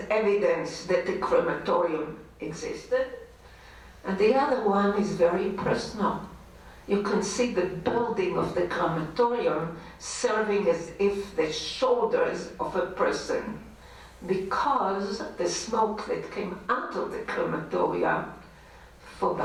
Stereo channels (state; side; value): identical; both; correlation 1.00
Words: evidence that the crematorium existed. And the other one is very personal. You can see the building of the crematorium serving as if the shoulders of a person, because the smoke that came out of the crematoria for